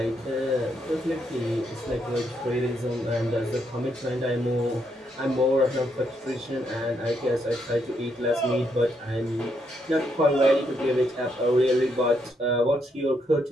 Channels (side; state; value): both; normal; correlation 0.77